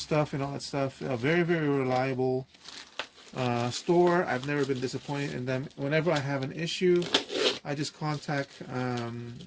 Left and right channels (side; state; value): both; identical; correlation 1.00